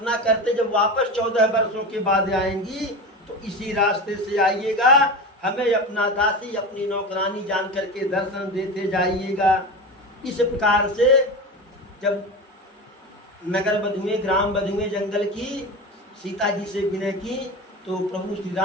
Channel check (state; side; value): normal; both; correlation 0.26